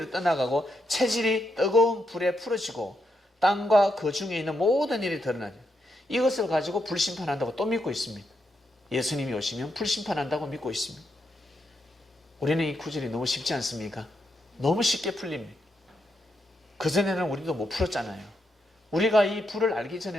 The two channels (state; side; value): normal; both; correlation 0.82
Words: 떠나가고 체질이 뜨거운 불에 풀어지고 땅과 그 중에 있는 모든 일이 드러나니 이것을 가지고 불심판한다고 또 믿고 있습니다. 예수님이 오시면 불심판한다고 믿고 있습니다. 우리는 이 구절이 너무 쉽지 않습니까? 너무 쉽게 풀립니다. 그전에는 우리도 못 풀었잖아요. 우리가 이 불을 알기